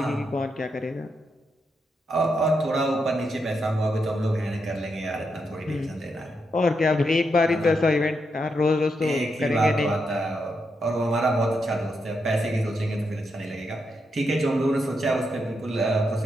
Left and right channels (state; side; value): normal; both; correlation 0.83